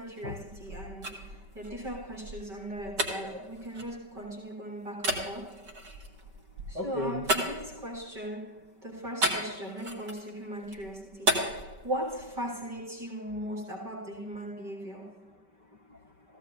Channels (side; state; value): left; late; 5.2 ms